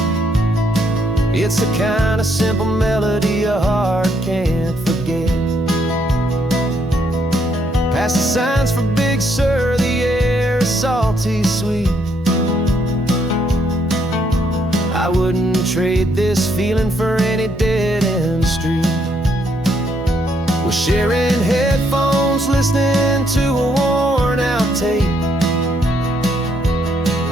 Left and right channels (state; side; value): normal; both; correlation 0.72